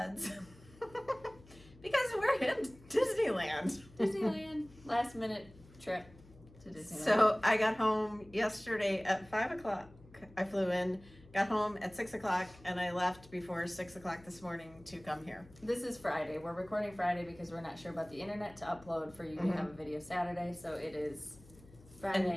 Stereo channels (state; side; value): noise; left; hum, 23 dB below the sound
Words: because we're in Disneyland. Disneyland. Last minute trip to Disneyland. So I got home yesterday at 5 o'clock. I flew in, got home at 6 o'clock, and I left before 6 o'clock this morning to come here. This is Friday. We're recording Friday because we're not sure about the internet to upload for you to have a video Saturday. So it is